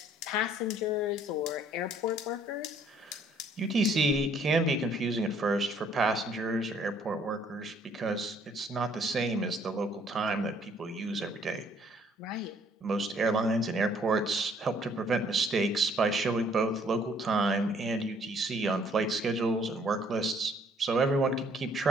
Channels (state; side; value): normal; both; correlation 0.62